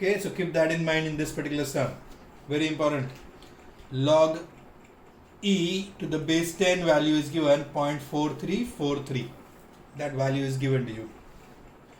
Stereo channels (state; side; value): identical; both; correlation 1.00